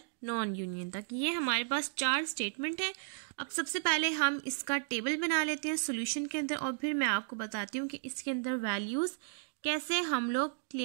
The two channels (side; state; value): left; silent; digital silence